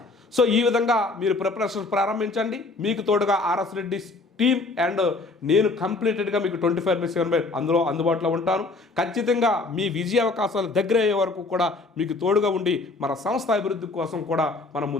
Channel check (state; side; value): quieter; right; 3.5 dB